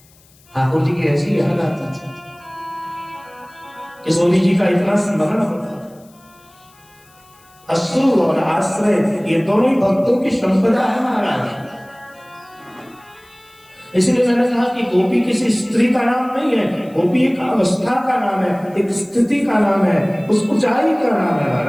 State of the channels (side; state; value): left; noise; hiss, 30 dB below the sound